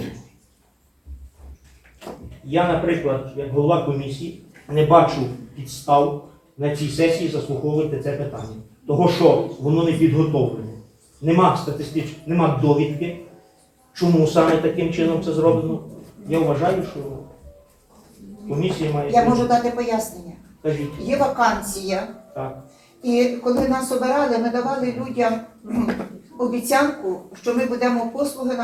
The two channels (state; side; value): identical; both; correlation 1.00